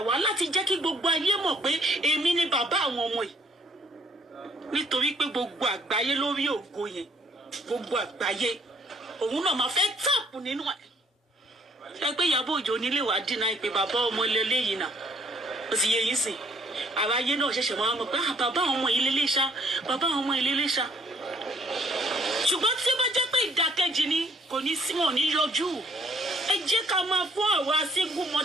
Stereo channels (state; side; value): normal; both; correlation 0.64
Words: wá láti jẹ́ kí gbogbo ayé mọ̀ pé èmi ni bàbá àwọn ọmọ yìí. nítorí pé gbogbo àgbáyé lórí ògo yẹn gbogbo àgbáyé òun náà máa fẹ́ tààpù nínú ẹ̀. Ṣé pé Ìyábọ̀ Òjó nílé wàá dínà ìpè bàbá ọmọ lélẹ́yìí náà ó sì yẹ yín sìn àráyé náà ṣẹ̀ṣẹ̀ máa mọ̀ pé bàbá àwọn ọmọ ilé léṣá bàbá àwọn ọmọ ilé léṣá. Ṣùgbọ́n tí ó bá jẹ́ pé ìdákẹ́jì ni kò ní sí wọn ní yọjú. Ẹ jẹ́ ká máa fún àwa single